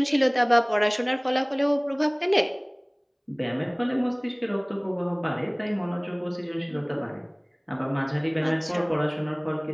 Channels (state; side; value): identical; both; correlation 1.00